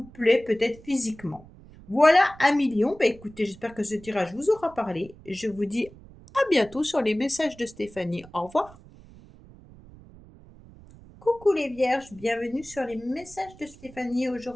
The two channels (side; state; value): right; noise; rumble, 21 dB below the sound